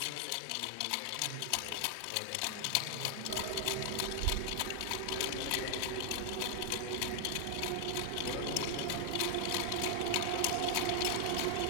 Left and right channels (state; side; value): different; both; correlation 0.00